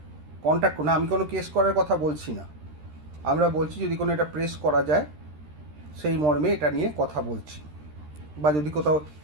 কন্ট্যাক্ট করুন। আমি কোনো কেস করার কথা বলছি না, আমরা বলছি যদি কোনো এটা প্রেস করা যায় সেই মর্মে এটা নিয়ে কথা বলছি। বা যদি কোথাও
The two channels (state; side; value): late; left; 13 ms